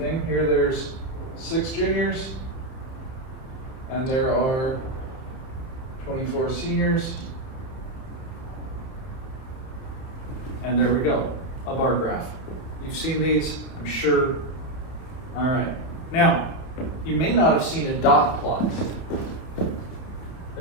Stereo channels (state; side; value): late; right; 30 ms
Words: Here there's 6 juniors, and there are 24 seniors. And there we go, a bar graph. You've seen these, I'm sure. All right. Now, you may not have seen a dot plot. A